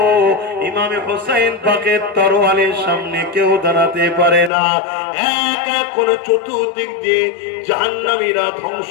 ইমামে হোসেন পাকের তরোয়ালের সামনে কেউ দাঁড়াতে পারে না। এক এক করে চতুর্দিক দিয়ে জাহান্নামীরা ধ্বংস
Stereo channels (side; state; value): right; drops out; at 4.5 s